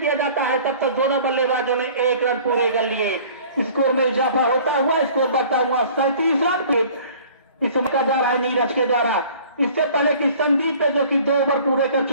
जाता है तब तक दोनों बल्लेबाजों ने 1 रन पूरे कर लिए। स्कोर में इजाफा होता हुआ स्कोर बढ़ता हुआ 37 रन इस समय का जा रहा है नीरज के द्वारा। इससे पहले कि संदीप पे जो कि 2 ओवर पूरे कर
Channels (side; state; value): both; inverted; correlation -0.49